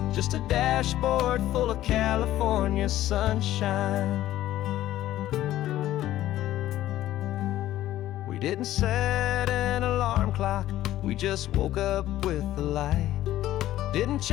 just a dashboard full of California sunshine. We didn't set an alarm clock, we just woke up with the light. Didn't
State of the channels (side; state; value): right; quieter; 14.0 dB